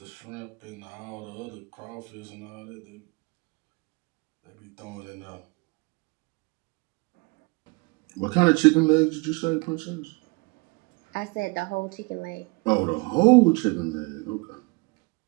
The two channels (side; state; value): left; quieter; 28.1 dB